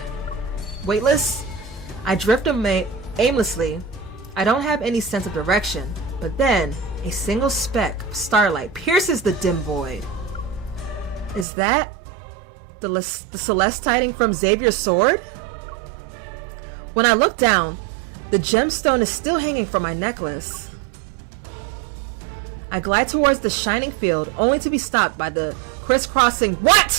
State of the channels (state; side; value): drops out; left; at 11.5 s